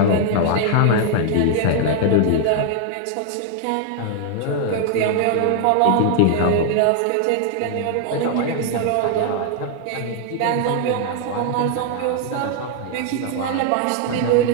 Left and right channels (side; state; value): both; different; correlation 0.00